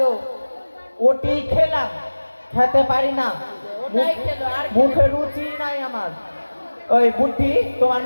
ওটি খেলাম খেতে পারি না মুখে রুচি নাই আমার ওই বুদ্ধি তোমার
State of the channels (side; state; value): both; inverted; correlation -1.00